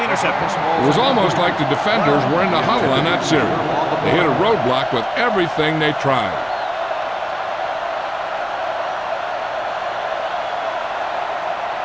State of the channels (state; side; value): identical; both; correlation 1.00